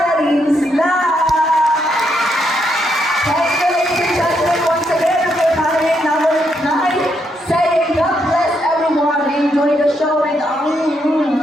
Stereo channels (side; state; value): both; normal; correlation 0.78